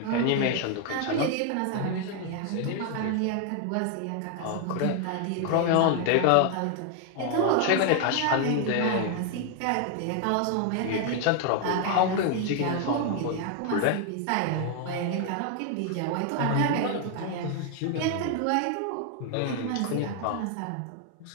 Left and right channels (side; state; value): both; different; correlation 0.00